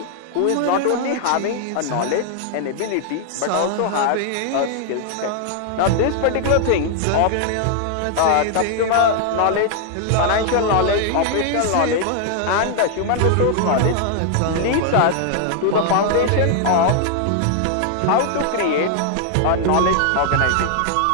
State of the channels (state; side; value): different; both; correlation 0.00